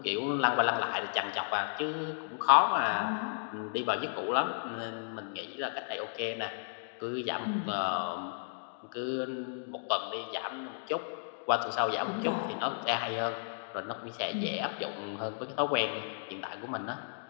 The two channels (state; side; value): silent; right; digital silence